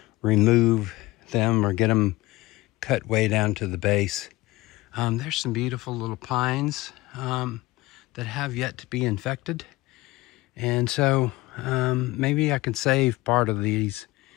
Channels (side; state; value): right; quieter; 19.6 dB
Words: remove them or get them cut way down to the base. There's some beautiful little pines that have yet to be infected. And so maybe I can save part of these